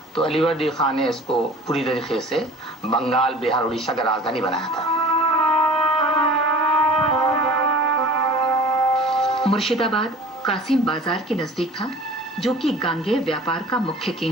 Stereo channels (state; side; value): normal; both; correlation 0.44